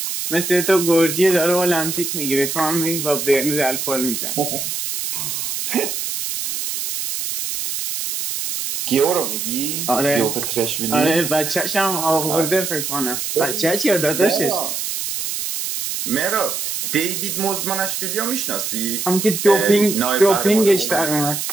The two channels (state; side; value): noise; right; hiss, 4 dB below the sound